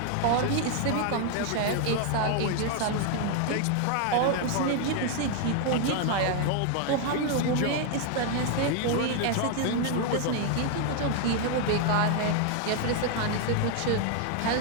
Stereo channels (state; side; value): different; both; correlation 0.00